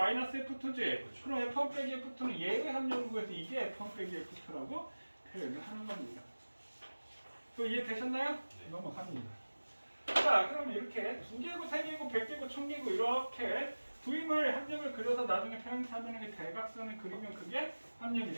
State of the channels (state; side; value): inverted; both; correlation -1.00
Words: F2지? 그럼 F1 빼기 F2는 얘의 합력을 구해서 이게 F1 빼기 F2라고 표현을 하는 겁니다. 또 이해되셨나요? 네. 넘어갑니다. 자, 그럼 이렇게 2개고 3개고 100개고 1000개고 이렇게 두 임의 합력을 그려서 나중에 평행사변형의 대각선을 그리면 그게